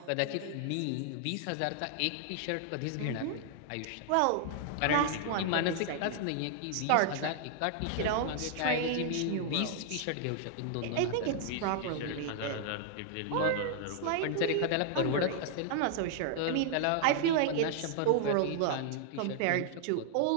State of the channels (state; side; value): different; both; correlation 0.00